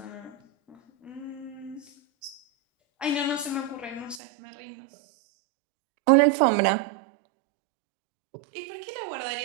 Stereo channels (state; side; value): drops out; left; at 4.2 s